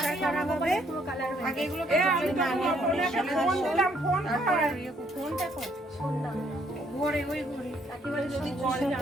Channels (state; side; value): normal; both; correlation 0.68